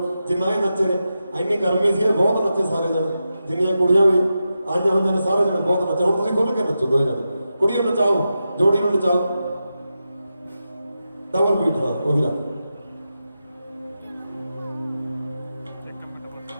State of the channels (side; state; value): both; inverted; correlation -0.90